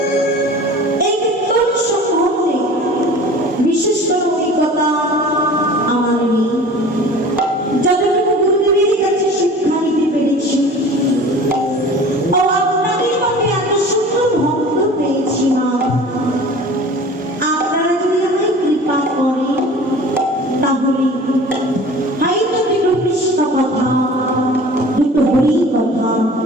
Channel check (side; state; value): both; normal; correlation 0.42